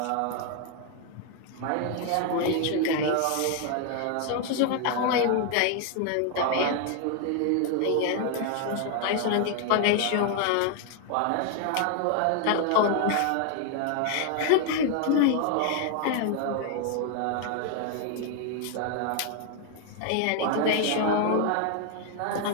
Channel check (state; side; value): different; both; correlation 0.01